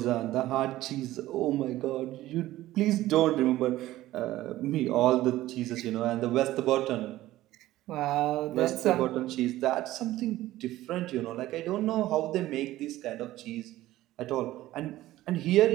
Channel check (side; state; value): left; quieter; 15.7 dB